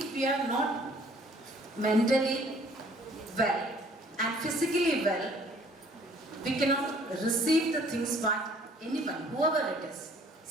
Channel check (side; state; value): both; normal; correlation 0.57